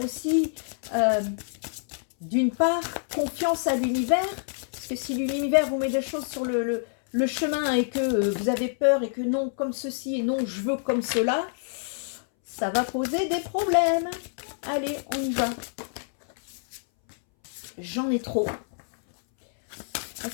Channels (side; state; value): right; silent; 60 dB below the other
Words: aussi, d'une part, confiance à l'univers. Parce que si l'univers vous met des choses sur le chemin et que vous avez peur et que non, comme ceci et non, je veux comme cela, ça va poser des problèmes. Allez, on y va. J'en ai trop.